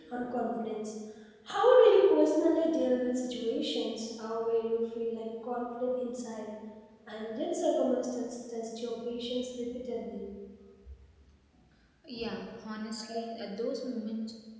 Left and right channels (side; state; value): both; identical; correlation 1.00